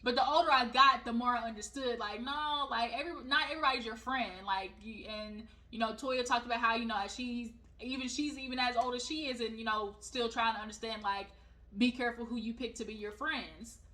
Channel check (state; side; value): identical; both; correlation 1.00